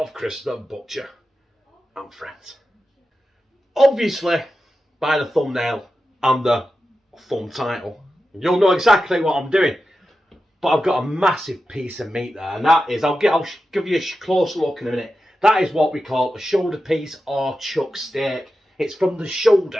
Chris the Butcher and Friends. Obviously, by the thumbnail and the thumb title, you'll know exactly what I'm doing. But I've got a massive piece of meat there, and that is, I'll give you a close look in a minute. That is what we call a shoulder piece or chuck steak. It's from the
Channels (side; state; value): both; normal; correlation 0.92